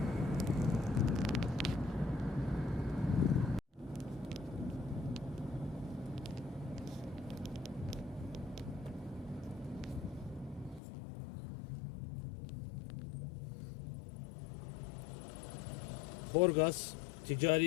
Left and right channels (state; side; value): drops out; right; at 10.8 s